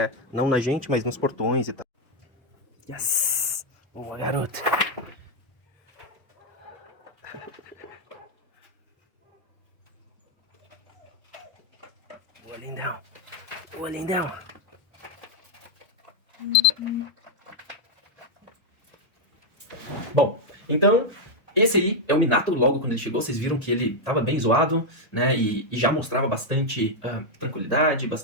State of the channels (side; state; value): both; normal; correlation 0.01